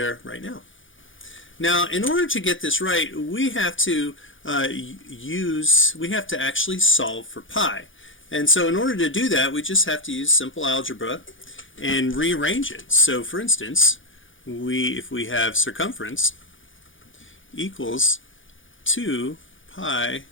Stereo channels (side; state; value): right; late; 0.57 ms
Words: right now. Now, in order to get this right, we have to actually solve for pi. And so in order to do that, we just have to use simple algebra and rearrange it. So for instance, if we have circumference equals 2 pi